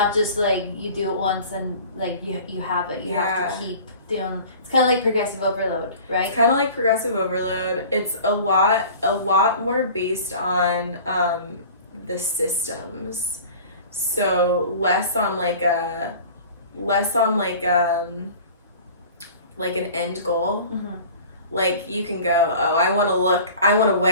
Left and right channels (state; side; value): inverted; both; correlation -0.43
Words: just you do it once and you have it. You have to keep doing. It's kind of like progressive overload, right? It's kind of like progressive overload. It's a lot more based on the systems. So less on an end goal. Like you can go, I want to